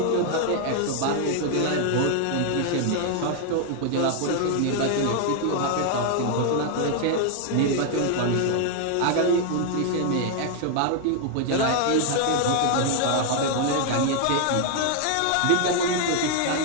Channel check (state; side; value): different; both; correlation 0.00